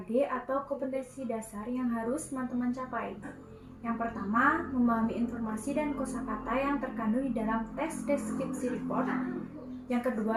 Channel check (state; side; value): identical; both; correlation 1.00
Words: atau kompetensi dasar yang harus teman-teman capai. Yang pertama, memahami informasi dan kosakata yang terkandung di dalam teks deskripsi report. Yang